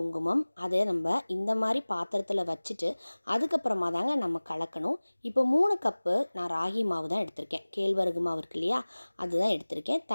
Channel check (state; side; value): inverted; both; correlation -1.00